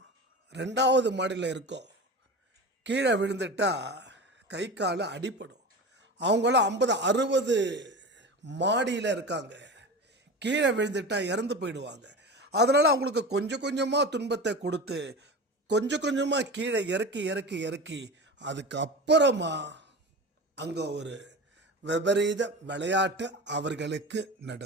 2வது மாடியில் இருக்கோம். கீழே விழுந்துட்டா கை கால அடிப்படும். அவங்களாம் 50-60 மாடியில் இருக்காங்க. கீழே விழுந்துட்டா இறந்து போயிடுவாங்க. அதனால் அவங்களுக்கு கொஞ்சம் கொஞ்சமாக துன்பத்தை கொடுத்து கொஞ்சம் கொஞ்சமாக கீழே இறக்கி இறக்கி இறக்கி அதுக்கப்புறமா அங்கே ஒரு விபரீத விளையாட்டு அவர்களுக்கு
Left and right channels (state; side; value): normal; both; correlation 0.30